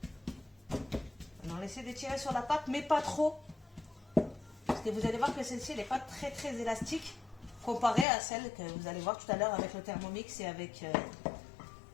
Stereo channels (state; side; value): drops out; right; at 8.1 s